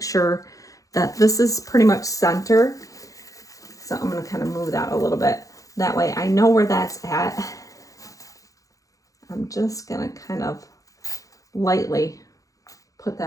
sure that this is pretty much center. So I'm gonna kind of move that a little bit. That way I know where that's at. I'm just gonna kind of lightly put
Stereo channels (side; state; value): right; late; 0.16 ms